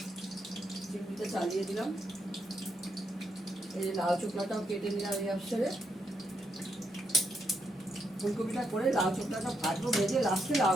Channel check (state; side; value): normal; both; correlation 0.79